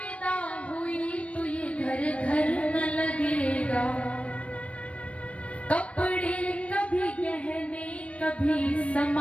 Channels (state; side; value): late; right; 0.063 ms